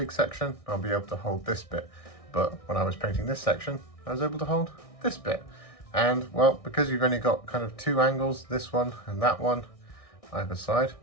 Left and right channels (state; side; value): late; right; 1.6 ms